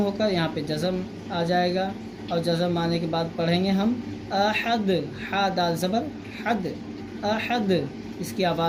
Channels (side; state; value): both; identical; correlation 1.00